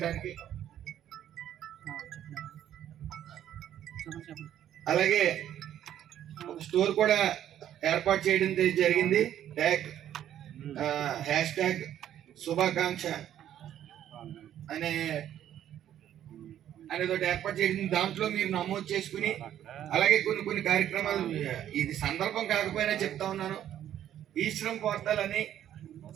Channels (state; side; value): quieter; left; 11.0 dB